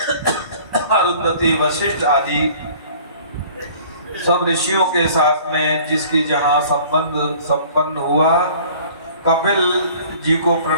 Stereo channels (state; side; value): inverted; both; correlation -0.50